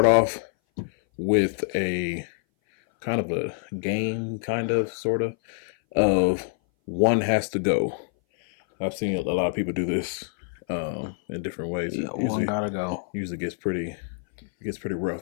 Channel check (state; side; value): silent; right; 58 dB below the other